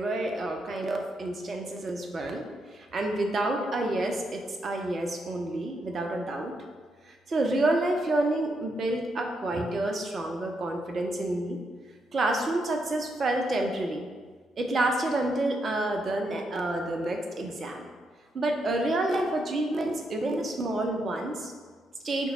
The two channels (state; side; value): normal; both; correlation 0.80